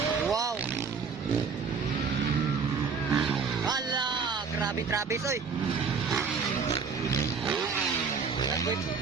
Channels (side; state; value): left; quieter; 5.5 dB